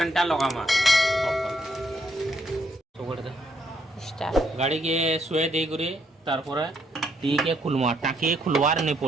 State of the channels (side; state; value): both; normal; correlation 0.73